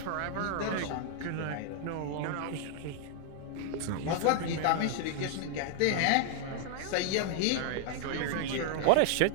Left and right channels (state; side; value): different; both; correlation -0.01